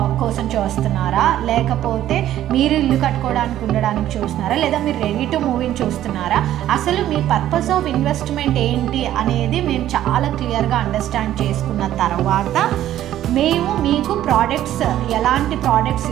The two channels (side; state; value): left; quieter; 12.5 dB